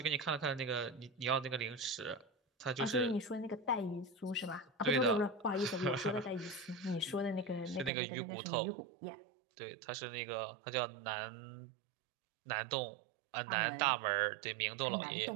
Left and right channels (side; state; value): left; drops out; at 7.9 s